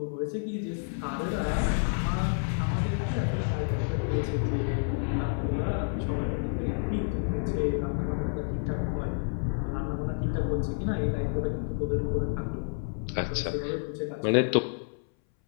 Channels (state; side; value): silent; right; 58 dB below the other